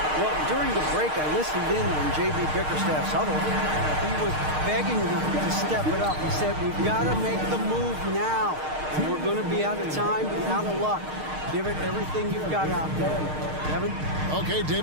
Well, during the break, I listened in on J.B. Bickerstaff's huddle. He was begging them to step it up. He said, we've got to make the move now. And we're going to be out of time and out of luck. Give it everything you've got out there. Kevin? Okay,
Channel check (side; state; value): left; late; 6.5 ms